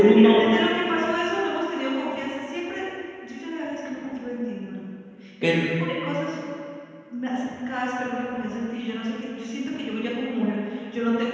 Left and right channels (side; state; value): both; identical; correlation 1.00